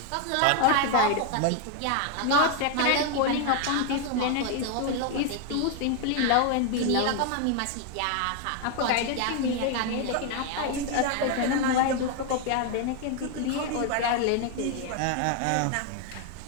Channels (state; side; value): different; both; correlation 0.01